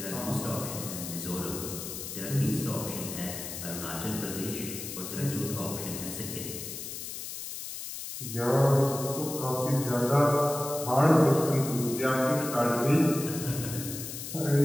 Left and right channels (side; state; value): left; noise; hiss, 8 dB below the sound